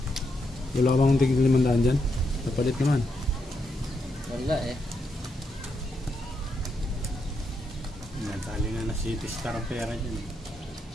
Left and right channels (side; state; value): both; normal; correlation 0.81